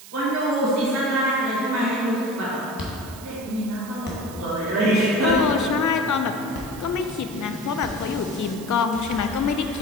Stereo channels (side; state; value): right; noise; hiss, 17 dB below the sound